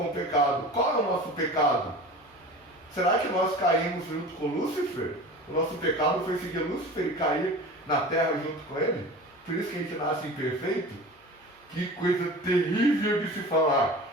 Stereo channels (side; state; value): both; normal; correlation 0.36